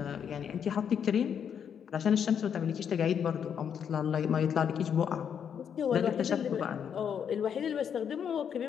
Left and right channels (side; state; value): right; quieter; 7.9 dB